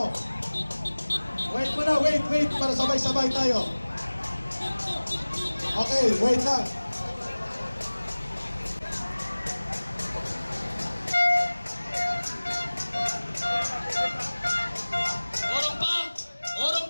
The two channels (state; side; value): inverted; both; correlation -1.00